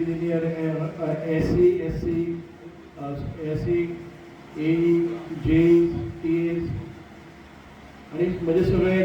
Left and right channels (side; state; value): both; identical; correlation 1.00